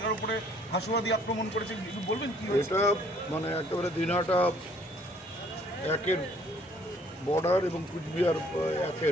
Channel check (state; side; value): normal; both; correlation 0.60